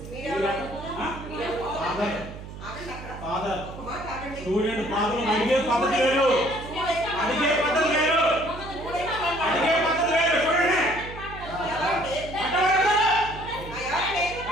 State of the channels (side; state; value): right; noise; hum, 12 dB below the sound